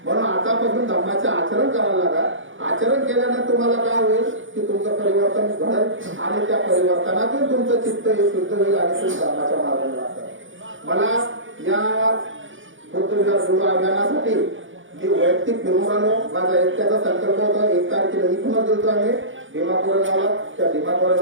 म्हणून आतापासून धम्माचे आचरण करायला लागा आचरण केल्याने तुम्हाला काय होईल की तुमचं परिवर्तन घडेल आणि त्या परिवर्तनातून तुमचं चित्त हे शुद्ध होईल आणि तुम्ही धम्माच्या मार्गाने जातात मला या बुद्ध अभियानासाठी मी वैयक्तिक फिरून आलो माझा एकट्याचा संकल्प होता 1 तारखेला इथूनच गेलो आम्ही भीमापूर गावाला त्या भीमापूर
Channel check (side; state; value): left; late; 0.57 ms